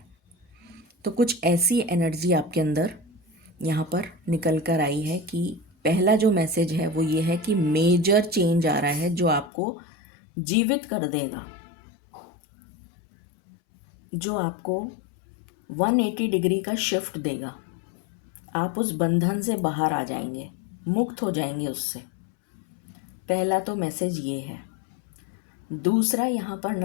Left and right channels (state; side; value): drops out; right; at 9.5 s